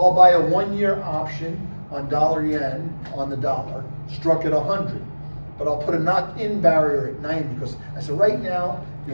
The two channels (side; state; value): both; inverted; correlation -1.00